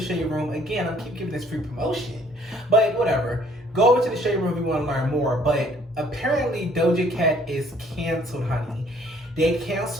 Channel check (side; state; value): both; normal; correlation 0.60